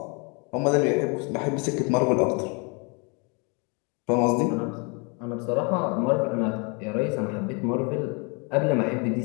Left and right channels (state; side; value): quieter; right; 33.0 dB